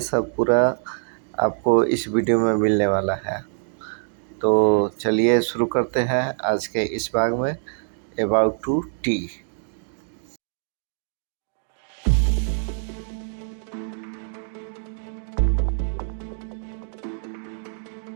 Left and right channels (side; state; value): left; silent; digital silence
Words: सब पूरा आपको इस वीडियो में मिलने वाला है। तो चलिए शुरू करते हैं आज के इस भाग में अबाउट टू टी।